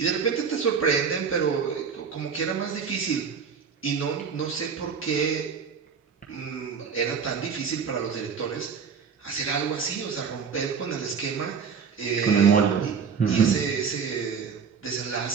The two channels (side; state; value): left; quieter; 6.2 dB